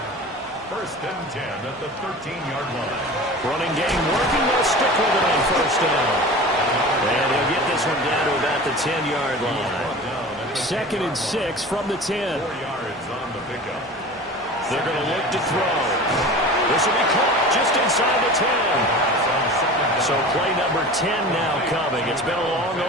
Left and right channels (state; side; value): normal; both; correlation 0.36